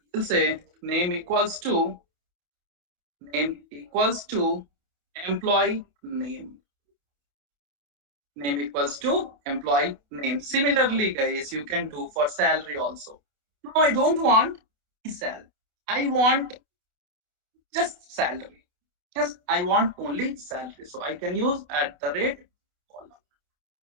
we'll say name equals to employee name. Name equals to employee name. Similarly guys, you can do for salary also. Now I don't want sal, I want just salary. Yes, I want only salary, so I can use at the rate column,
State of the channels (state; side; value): late; left; 28 ms